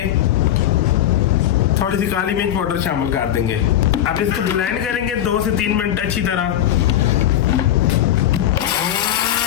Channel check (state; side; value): quieter; right; 11.5 dB